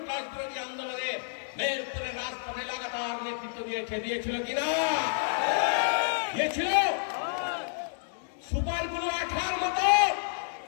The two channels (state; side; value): silent; right; digital silence